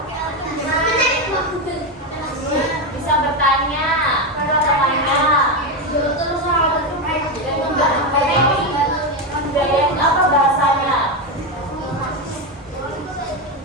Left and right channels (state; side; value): normal; both; correlation 0.11